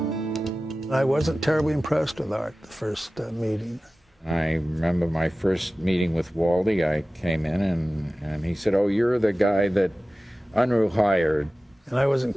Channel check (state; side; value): normal; both; correlation 0.96